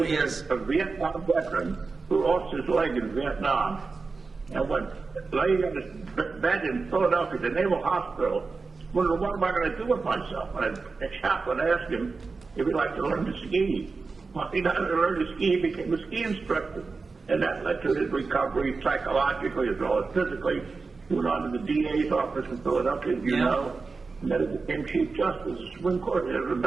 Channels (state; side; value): quieter; left; 4.3 dB